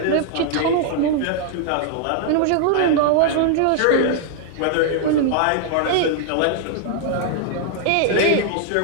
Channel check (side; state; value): both; different; correlation 0.00